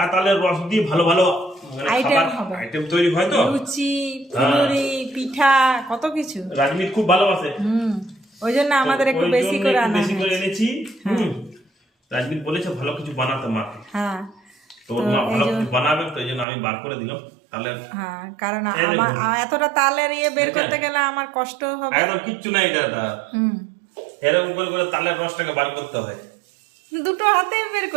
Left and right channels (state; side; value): drops out; left; at 16.4 s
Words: তালের রস দিয়ে ভালো ভালো আইটেম হবে, আইটেম তৈরি হয় তো, লুচি, ফুলুরি, পিঠা, কত কিছু। রাজমিত খুব ভালোবাসে। ওই জন্য আমাদের একটু বেশি করে আনা বেশি করে এনেছি। রাজমিত বলেছে ভালো কিছু বানাতে মাকে। হ্যাঁ, তো মা ভালো কিছু বানাবে, তো এই জন্য আমি বার করে দিলাম তাহলে। হ্যাঁ, কারণ আমার এতটা তালের ইয়ে বের করতে গেলে আমার কষ্ট হবে। একদম কিচ্ছু নাই এটা। এরকম করে করে তালের রসটাকে বার করতে হয়। দুটো হাতে বের